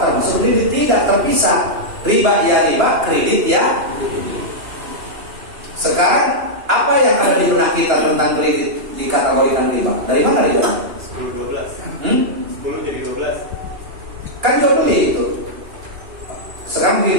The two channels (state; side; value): late; left; 2.9 ms